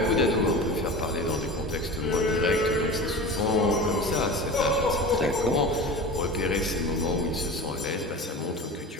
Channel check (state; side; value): normal; both; correlation 0.32